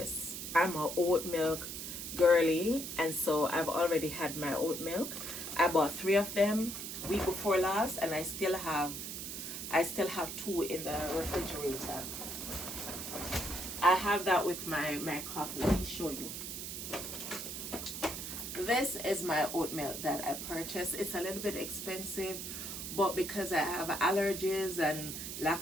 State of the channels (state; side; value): noise; right; hiss, 6 dB below the sound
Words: I'm a oat milk girly, and so I've already had my oat milk. I bought 3 of them week before last, and I still have 2 in the refrigerator. I have that with my coffee. Let me show you. This is my oat milk that I purchased. It's a little bit expensive, but because I have allergies and